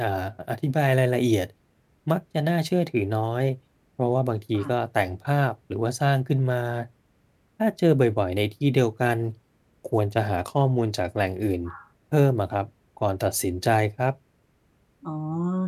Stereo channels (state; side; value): identical; both; correlation 1.00